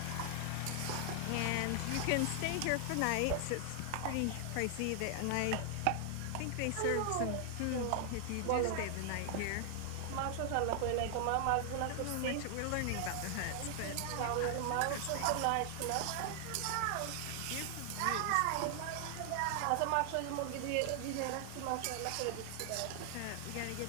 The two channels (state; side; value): different; both; correlation 0.00